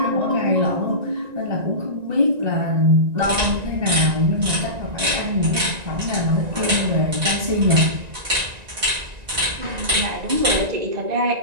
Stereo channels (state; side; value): late; left; 1.9 ms